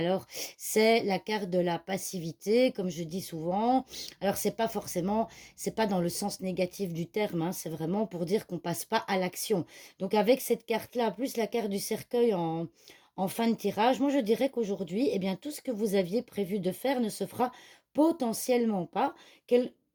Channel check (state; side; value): identical; both; correlation 1.00